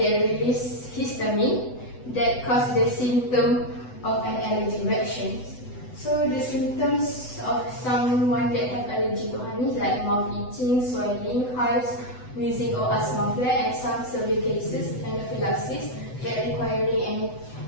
release histamine that cause the symptom of an allergic reaction. So the symptoms of someone that have allergy to honey is like mouth itching, swelling, hives, wheezing or asthma flare, and some severe cases anaphylaxis that requiring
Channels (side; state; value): right; late; 8.0 ms